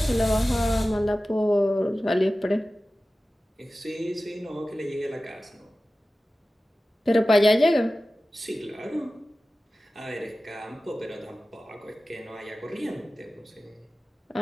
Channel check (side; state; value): both; normal; correlation 0.96